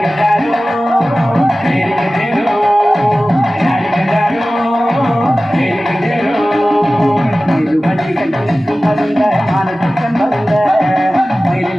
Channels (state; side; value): normal; both; correlation 0.96